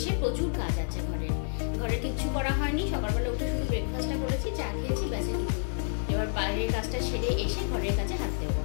প্রচুর কাজ আছে ঘরে কিচ্ছু করা হয়নি। সকালবেলা উঠে শুধু ব্রেকফাস্টটা করেছি, চা খেয়েছি, ব্যাস এটুকুই। এবার বাইরের কাজটা সেরে এসে ঘরের কাজে হাত দেবো।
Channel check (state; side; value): silent; right; digital silence